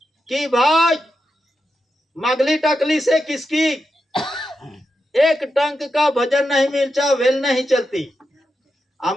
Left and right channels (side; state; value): both; normal; correlation 0.87